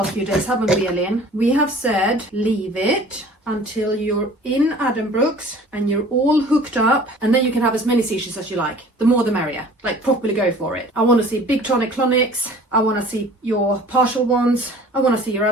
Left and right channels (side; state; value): both; normal; correlation 0.47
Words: few days, haven't we, Elin? We have said leave it until you're in Addenbrooke's and you're all hooked up, and then you can have as many seizures as you like. The more the merrier. Like, properly go for it. I want to see big tonic-clonics. I want to see your partial ones. I want to see your